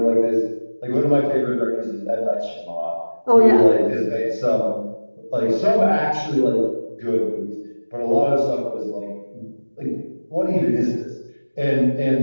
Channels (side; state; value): both; inverted; correlation -1.00